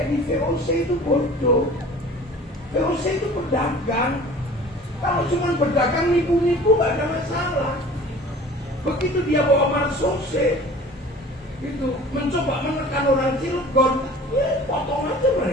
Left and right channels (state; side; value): normal; both; correlation 0.44